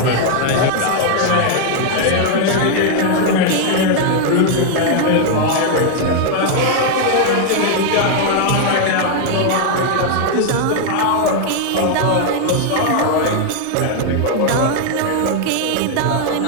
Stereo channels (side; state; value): both; different; correlation 0.00